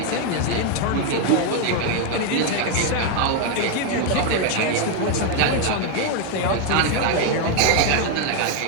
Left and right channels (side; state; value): both; different; correlation 0.01